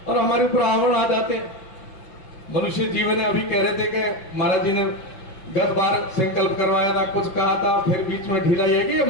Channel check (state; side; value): late; right; 5.8 ms